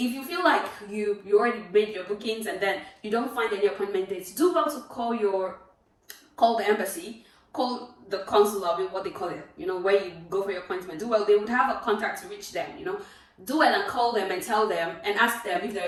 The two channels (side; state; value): both; identical; correlation 1.00